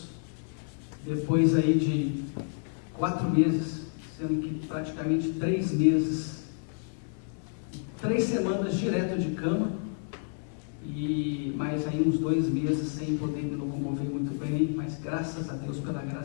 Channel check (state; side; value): silent; right; 58 dB below the other